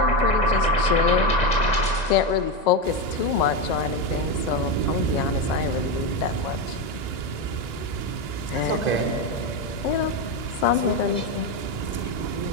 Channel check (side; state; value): right; late; 1.9 ms